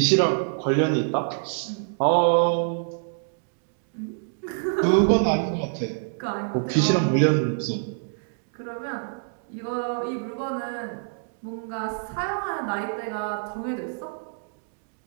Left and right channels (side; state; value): left; silent; digital silence